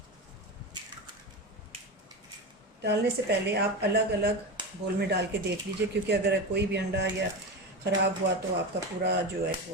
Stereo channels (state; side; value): normal; both; correlation 0.21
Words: डालने से पहले आप अलग अलग बोल में डाल के देख लीजिए, क्योंकि अगर कोई भी अंडा या ख़राब हुआ तो आपका पूरा जो है